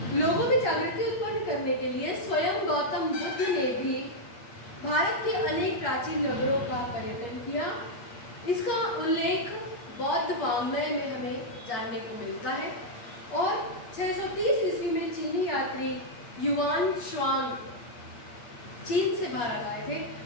लोगों में जागृति उत्पन्न करने के लिए स्वयं गौतम बुद्ध ने भी भारत के अनेक प्राचीन नगरों का पर्यटन किया। इसका उल्लेख बौद्ध वाङ्मय में हमें जानने को मिलता है और 630 ईस्वी में चीनी यात्री युआन श्वांग चीन से भारत आए थे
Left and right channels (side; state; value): right; late; 8.5 ms